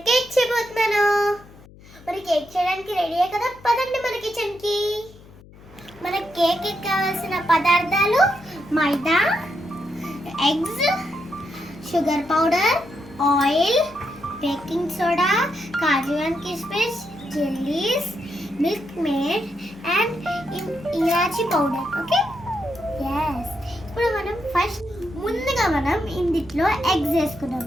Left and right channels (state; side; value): noise; left; hum, 22 dB below the sound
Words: కేక్ చేయబోతున్నాను. మరి కేక్ చేయడానికి రెడీయే కదా, పదండి మన కిచెన్కి. మన కేక్ కావాల్సిన పదార్థాలు maida, eggs, sugar powder, oil, baking soda, kaju and కిస్మిస్, jellies, Milkmaid and elaichi powder. Okay, yes. ఇప్పుడు మనం ముందుగా మనం ఇందులో ఎగ్స్ వేసుకున్నాం.